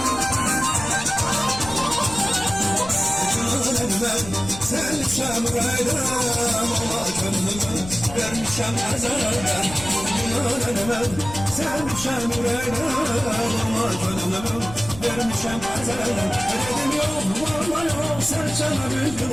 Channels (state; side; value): noise; left; rumble, 13 dB below the sound